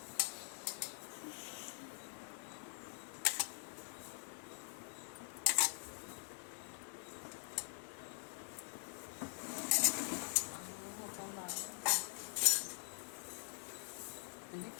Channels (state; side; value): silent; right; digital silence